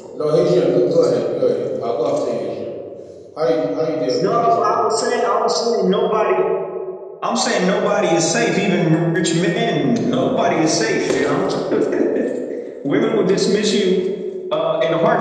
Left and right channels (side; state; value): both; identical; correlation 1.00